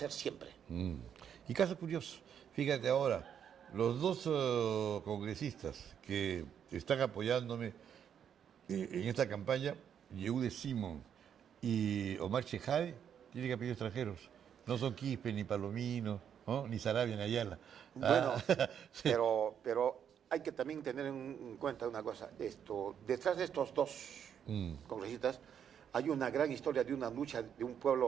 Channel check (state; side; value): quieter; left; 8.5 dB